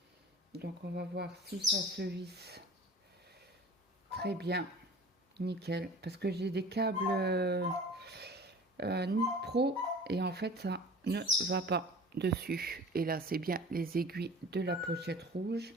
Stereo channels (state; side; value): normal; both; correlation 0.41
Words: Donc, on va voir si ça se visse très bien. Nickel. Parce que j'ai des câbles Pro et en fait, ça ne va pas dessus. Et là, c'est bien les aiguilles de la pochette rouge.